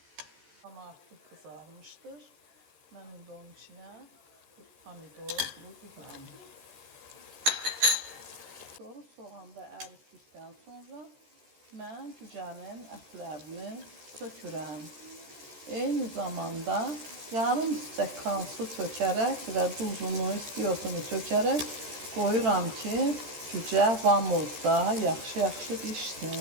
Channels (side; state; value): left; late; 14 ms